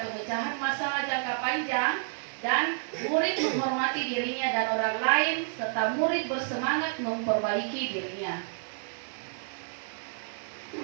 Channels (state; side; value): silent; left; digital silence